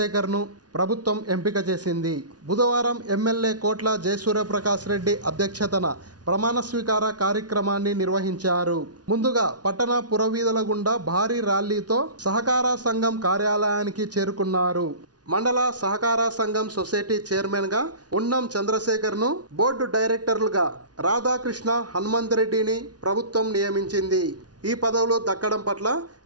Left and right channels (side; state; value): left; late; 0.69 ms